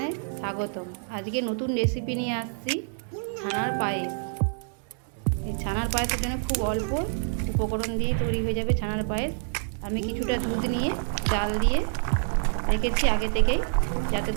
স্বাগতম। আজকে নতুন রেসিপি নিয়ে আসছি, ছানার পায়েস। এই ছানার পায়েসের জন্য খুব অল্প উপকরণ দিয়ে তৈরি হয়ে যাবে ছানার পায়েস। আমি কিছুটা দুধ নিয়ে জাল দিয়ে রেখেছি আগে থেকেই, যাতে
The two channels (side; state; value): left; silent; 60 dB below the other